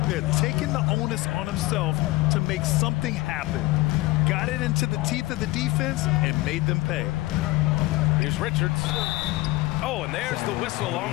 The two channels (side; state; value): right; quieter; 19.7 dB